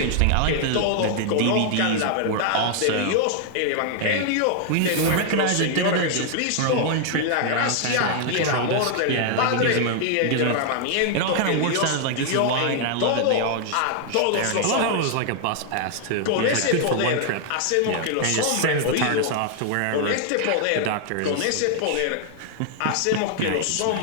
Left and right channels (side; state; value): both; different; correlation 0.00